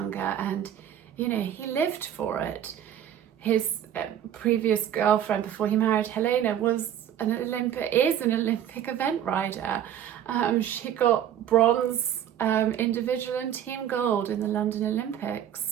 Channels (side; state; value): left; quieter; 10.1 dB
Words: and he lived for it. His previous girlfriend before he married Helena is an Olympic event rider. She got bronze individual and team gold in the London